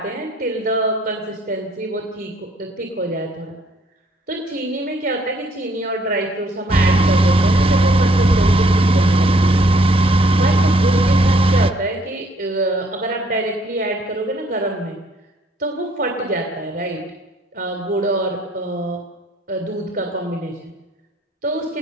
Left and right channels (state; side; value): normal; both; correlation 0.64